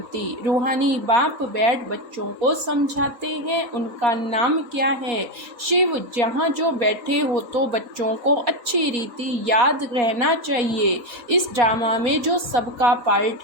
रूहानी बाप बैठ बच्चों को समझाते हैं, उनका नाम क्या है? शिव। जहाँ जो बैठे हो तो बच्चों को अच्छी रीति याद रहना चाहिए। इस ड्रामा में जो सबका पार्ट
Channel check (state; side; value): late; left; 3.9 ms